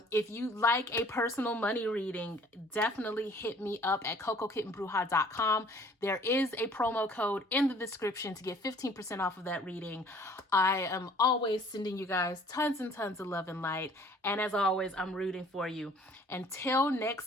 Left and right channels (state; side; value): normal; both; correlation 0.54